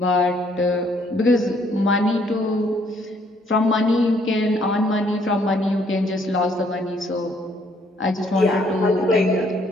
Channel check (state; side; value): normal; both; correlation 0.66